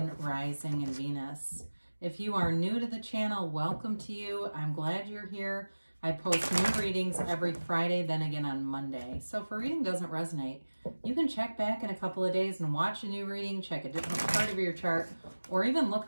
Rising, and Venus. If you are new to the channel, welcome to you. I'm glad you're here. I post new readings every Friday, then again on Monday. So if a reading doesn't resonate, you can check back in a couple of days and watch a new reading, check a different part of your chart, or even look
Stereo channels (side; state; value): both; inverted; correlation -1.00